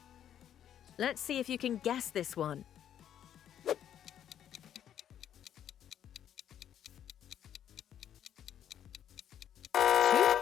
Let's see if you can guess this one.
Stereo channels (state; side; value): quieter; right; 10.1 dB